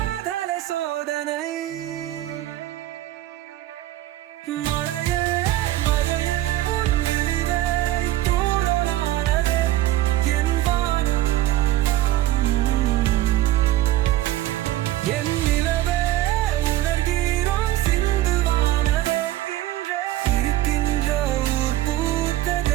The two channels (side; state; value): left; quieter; 14.9 dB